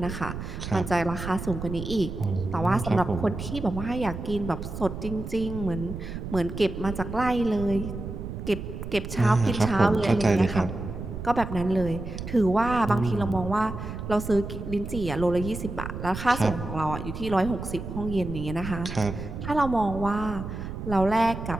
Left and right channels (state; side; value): noise; right; rumble, 8 dB below the sound